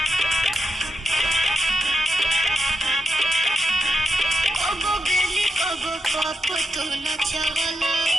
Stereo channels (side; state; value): both; normal; correlation 0.86